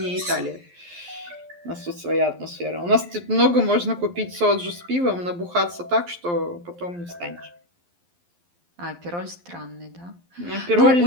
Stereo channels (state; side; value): late; left; 11 ms